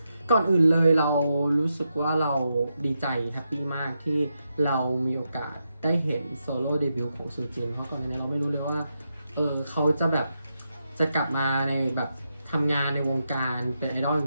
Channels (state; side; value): inverted; both; correlation -0.85